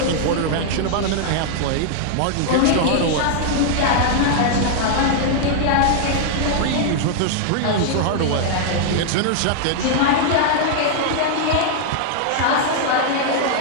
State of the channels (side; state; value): both; different; correlation -0.01